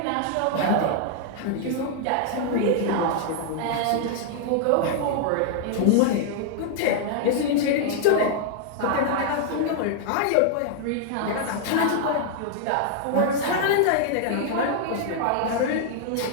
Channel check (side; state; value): both; different; correlation -0.01